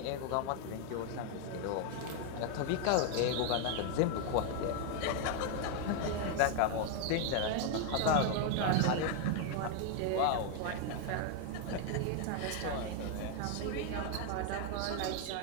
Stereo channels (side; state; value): both; different; correlation 0.01